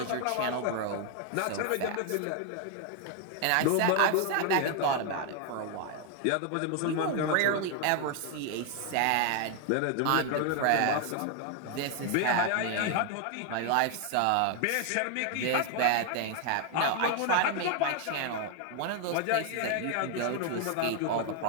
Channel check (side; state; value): both; different; correlation 0.01